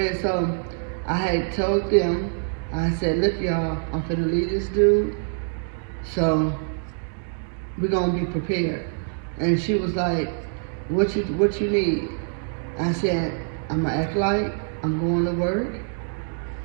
so I had told them, I said, look y'all, I'm finna leave this dude, so we're gonna be prepared. And she was like, what you need? I said, I'm gonna act like I'm going to work.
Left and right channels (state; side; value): silent; left; 62 dB below the other